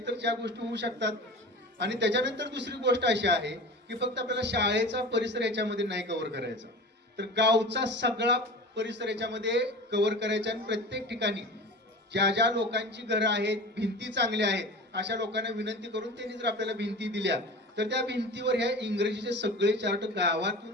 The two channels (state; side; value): normal; both; correlation 0.34